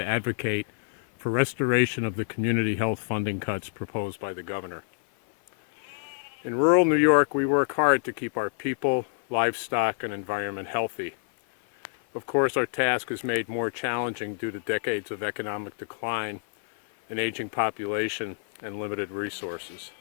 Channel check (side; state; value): right; silent; 56 dB below the other